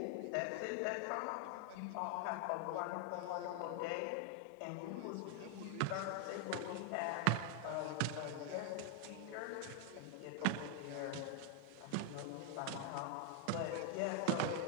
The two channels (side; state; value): both; different; correlation 0.00